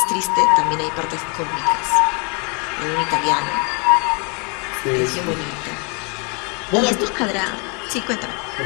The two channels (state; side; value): quieter; right; 33.8 dB